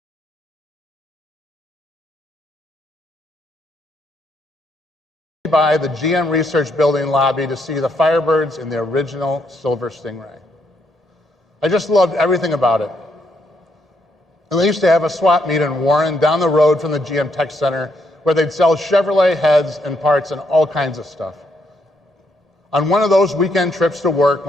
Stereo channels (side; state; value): both; normal; correlation 0.75